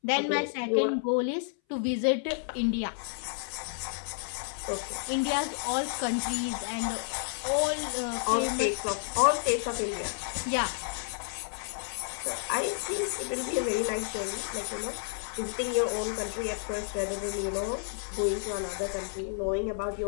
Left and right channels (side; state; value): right; silent; 57 dB below the other